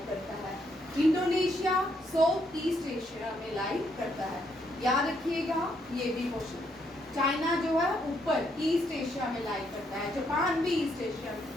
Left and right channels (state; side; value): normal; both; correlation 0.74